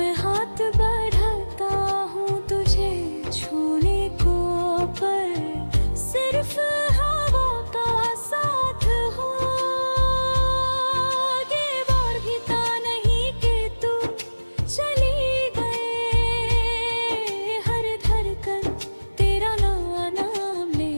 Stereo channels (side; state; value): both; inverted; correlation -1.00